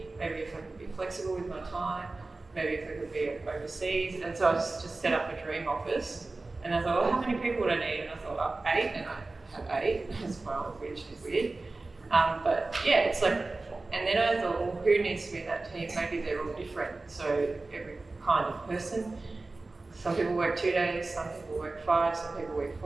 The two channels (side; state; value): left; quieter; 3.3 dB